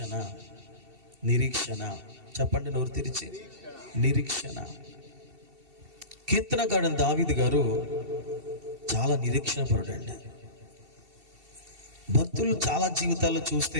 నిరీక్షణ చెప్పండి నోరు తెరిచి. నిరీక్షణ. కీర్తనకారుడు దావీదు గారు చాలా నిరీక్షణ పరుడండి. భక్తులు చాలా జీవితాల్లో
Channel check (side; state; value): left; late; 2.7 ms